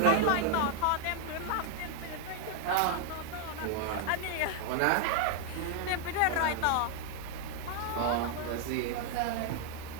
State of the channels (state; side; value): different; both; correlation 0.00